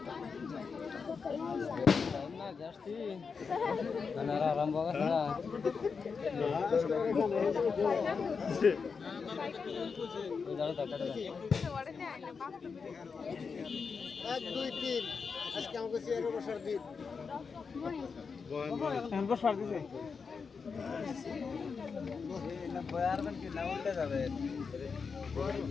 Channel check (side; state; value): right; quieter; 5.4 dB